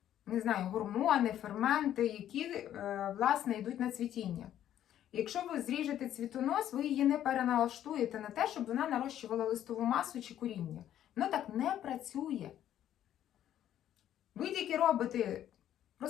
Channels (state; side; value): quieter; right; 11.3 dB